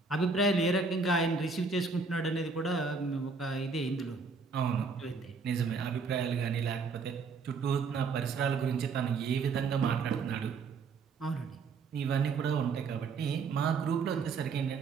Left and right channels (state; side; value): quieter; left; 4.7 dB